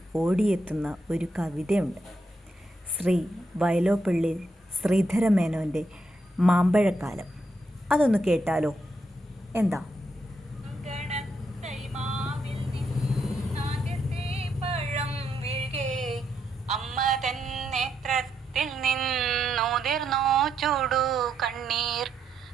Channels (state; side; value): normal; both; correlation 0.80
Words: ഓടിയെത്തുന്ന ഒരു കവിതയുണ്ട്. ശ്രീ വയലോപ്പള്ളി ശ്രീധരമേനോൻ്റെ മാമ്പഴക്കാലം. അതൊന്ന് കേട്ടാലോ? എന്താ? അമ്മ തൻ നേത്രത്തിൽ നിന്നുതിർന്നോ ചൂടു കണ്ണീർ.